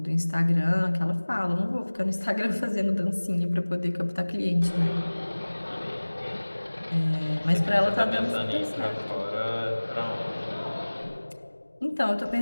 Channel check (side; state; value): both; inverted; correlation -1.00